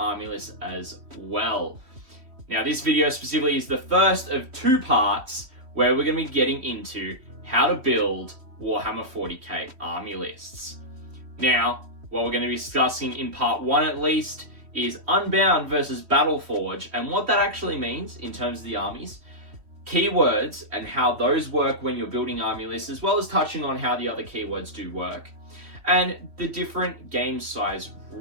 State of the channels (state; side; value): late; left; 3.1 ms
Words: lists as well. Now, this video specifically is the first of two parts where we're going to be getting into how to build Warhammer 40k army lists. Now, what we're going to be discussing in part one at least is Unbound versus Battle-Forged and what that actually means in terms of the armies, keywords and how those work when you're building army lists, as well as touching on how the other keywords do work, and the different game size